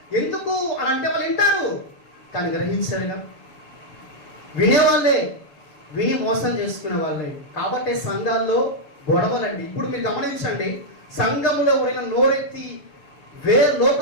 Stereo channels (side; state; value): right; late; 7.0 ms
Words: ఎందుకు అని అంటే వాళ్ళు వింటారు కానీ గ్రహించరుగా. వినేవాళ్ళే విని మోసం చేసుకునే వాళ్ళే. కాబట్టి సంఘాల్లో గొడవలండి. ఇప్పుడు మీరు గమనించండి, సంఘంలో ఎవరైనా నోరెత్తి